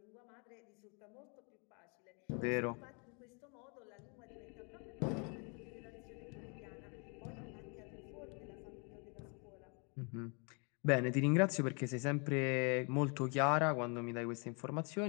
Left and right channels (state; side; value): quieter; right; 35.1 dB